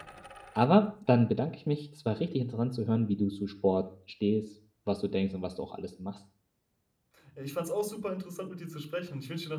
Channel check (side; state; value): both; identical; correlation 1.00